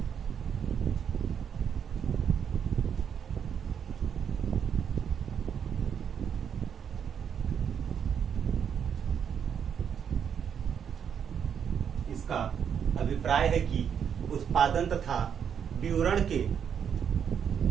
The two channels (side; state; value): left; quieter; 7.8 dB